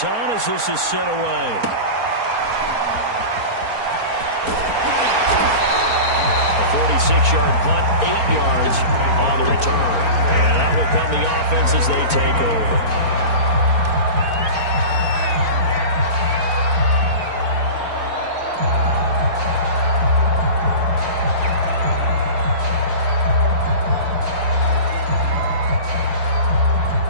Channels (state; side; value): late; left; 4.4 ms